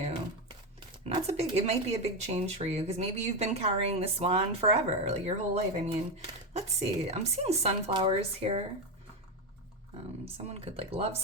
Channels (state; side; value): normal; both; correlation 0.12